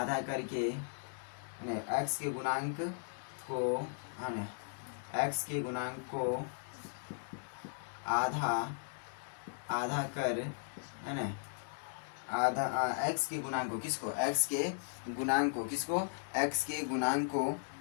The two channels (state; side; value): silent; right; 53 dB below the other